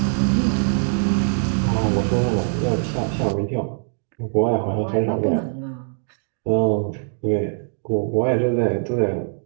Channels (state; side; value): silent; left; 64 dB below the other